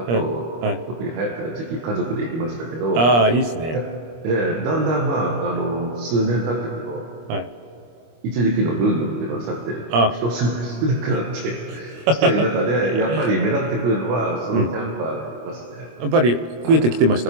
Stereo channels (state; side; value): late; left; 25 ms